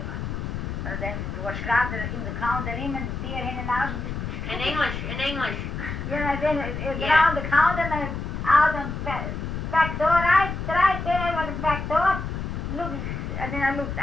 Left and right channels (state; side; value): noise; left; rumble, 5 dB below the sound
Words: Maar dan was graag in de counter in en die in en uit. In English. Yeah, then around the counter and out and back door, right there was the back door. Look, and then I looked